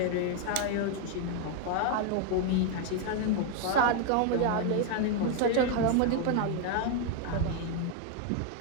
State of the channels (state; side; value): different; both; correlation 0.00